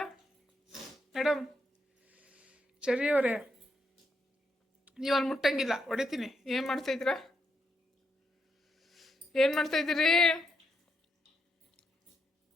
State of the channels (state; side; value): normal; both; correlation 0.80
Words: ಮೇಡಮ್ ಸರಿ ಅವರೇ ನೀವು ಅಲ್ಲಿ ಮುಟ್ಟಂಗಿಲ್ಲ ಹೊಡಿತೀನಿ ಏನು ಮಾಡ್ತಾಯಿದ್ದೀರಾ ಏನು ಮಾಡ್ತಾಯಿದ್ದೀರಿ